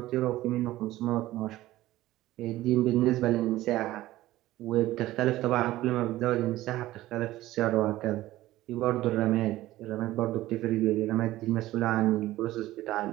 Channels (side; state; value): left; quieter; 16.1 dB